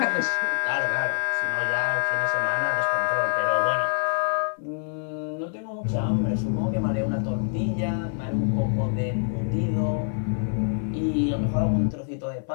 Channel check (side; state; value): right; silent; 61 dB below the other